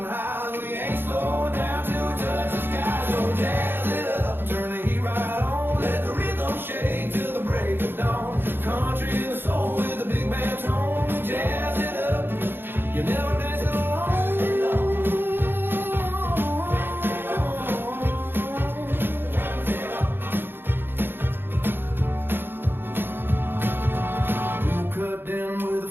highs. We ain't slowing down till we touch the sky. So jazz it up, turn the heat right on. Let the rhythm shake till the break of dawn. Country and the soul with a big band tone. Jazz it up, you never dance it alone. We'll cut down with a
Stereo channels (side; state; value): left; late; 0.10 ms